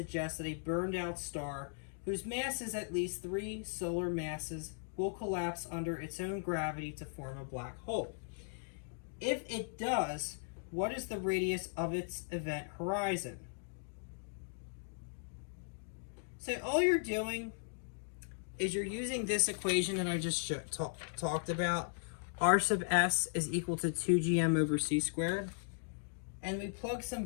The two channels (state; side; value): silent; right; digital silence